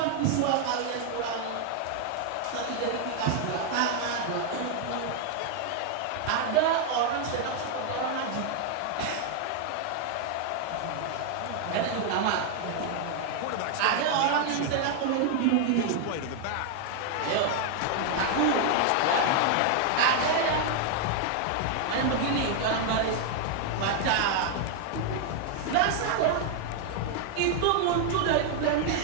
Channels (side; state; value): both; different; correlation 0.00